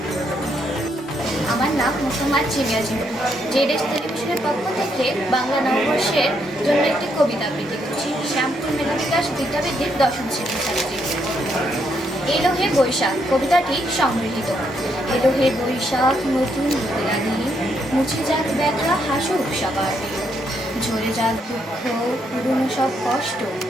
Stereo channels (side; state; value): both; normal; correlation 0.76